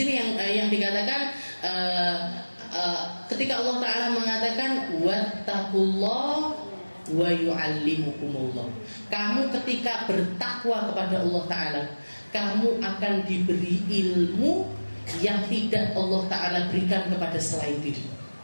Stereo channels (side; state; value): both; inverted; correlation -1.00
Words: yang dikatakan ketika Allah Ta'ala mengatakan wattaqullah wa yu'allimukumullah, kamu ketika bertakwa kepada Allah Ta'ala, kamu akan diberi ilmu yang tidak Allah Ta'ala berikan kepada selain diri.